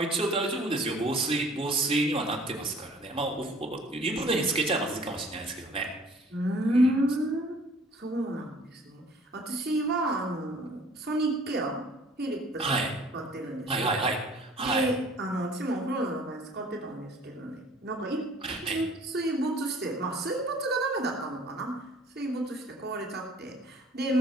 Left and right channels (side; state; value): both; normal; correlation 0.53